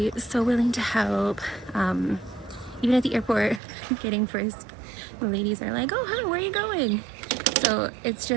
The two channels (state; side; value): drops out; left; at 3.6 s